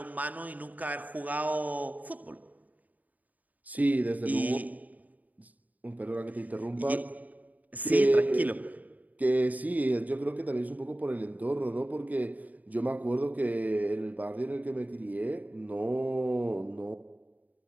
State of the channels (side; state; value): left; late; 0.077 ms